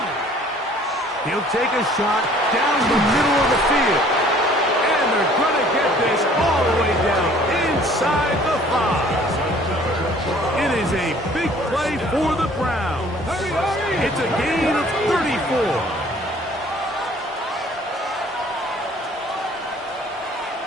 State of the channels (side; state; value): both; normal; correlation 0.54